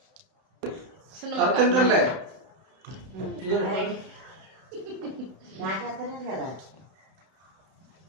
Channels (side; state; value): left; late; 31 ms